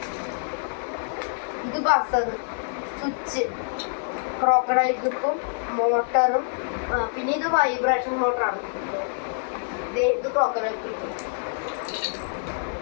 ഇത് ബസർ, സ്വിച്ച്, ക്രോക്കഡൈൽ ക്ലിപ്പും, മോട്ടറും, പിന്നെ ഇത് വൈബ്രേഷൻ മോട്ടറാണ്. ഇത് ക്രോക്കഡൈൽ ക്ലിപ്പും,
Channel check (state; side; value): silent; right; digital silence